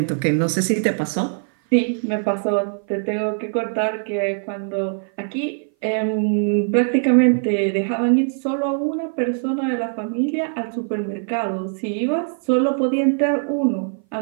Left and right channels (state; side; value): silent; left; 58 dB below the other